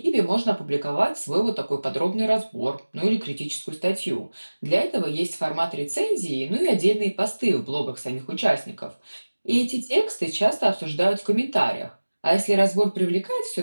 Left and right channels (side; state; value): both; inverted; correlation -1.00